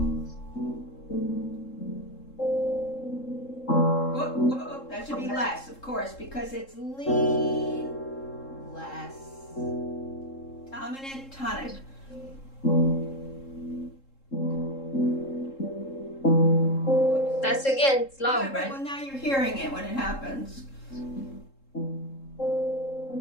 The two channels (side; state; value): right; late; 3.7 ms